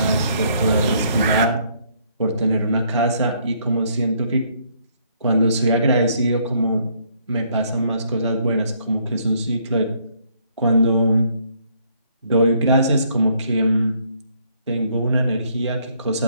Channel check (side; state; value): both; inverted; correlation -0.67